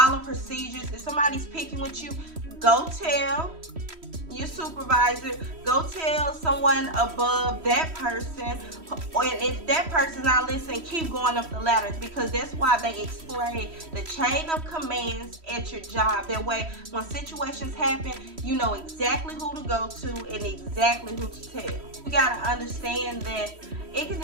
procedures. If somebody's picking with you, go tell your supervisor, go tell someone above that person, and if that person's not listening, keep going up the ladder, because that's why they explain the chain of commands at your job. That way, when situations happen, you know exactly who to go to and exactly who to tell. You gotta understand that it can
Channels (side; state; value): left; late; 3.1 ms